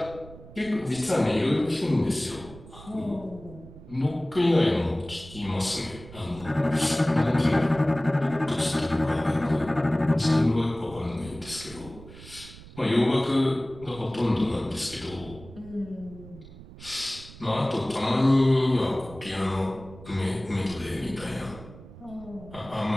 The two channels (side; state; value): right; noise; rumble, 17 dB below the sound